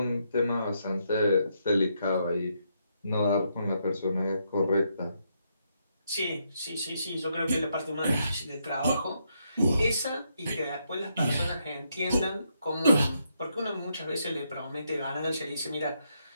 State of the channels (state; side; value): inverted; both; correlation -0.78